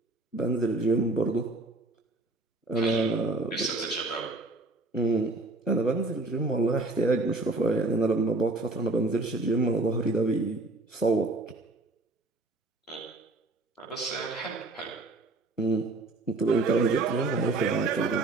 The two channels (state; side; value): quieter; left; 3.1 dB